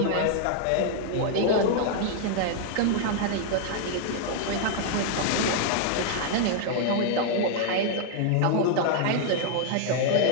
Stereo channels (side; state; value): both; different; correlation 0.00